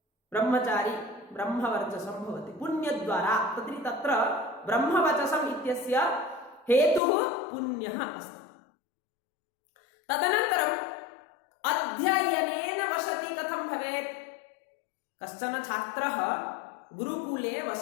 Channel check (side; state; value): right; drops out; at 7.0 s